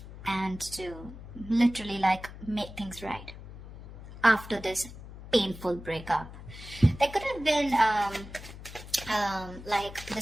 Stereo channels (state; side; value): noise; left; hum, 14 dB below the sound